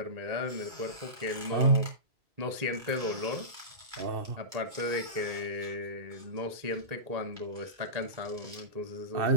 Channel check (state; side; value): late; left; 2.2 ms